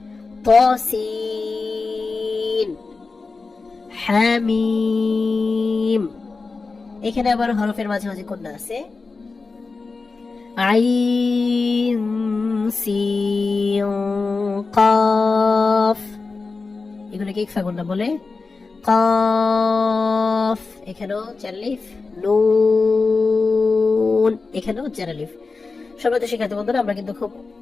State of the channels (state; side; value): quieter; right; 4.1 dB